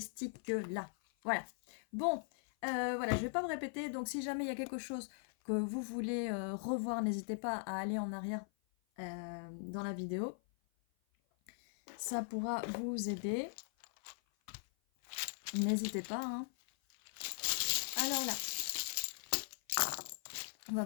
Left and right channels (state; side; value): silent; right; 51 dB below the other